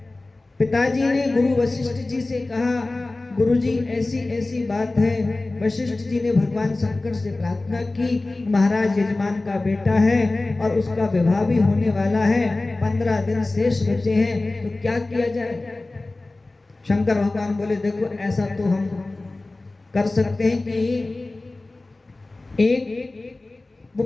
पिताजी ने गुरु वशिष्ठ जी से कहा, गुरुजी ऐसी ऐसी बात है। वशिष्ठ जी ने भगवान शंकर से प्रार्थना की, महाराज यजमान का बेटा है और उसका विवाह भी होने वाला है, 15 दिन शेष बचे हैं, तो क्या किया जाए। शंकर भगवान बोले, देखो ऐसा तो हम कर सकते हैं कि एक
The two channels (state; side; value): quieter; right; 3.1 dB